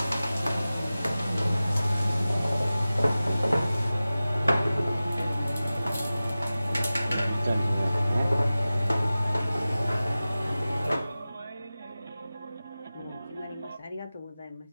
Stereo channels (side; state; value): both; inverted; correlation -0.96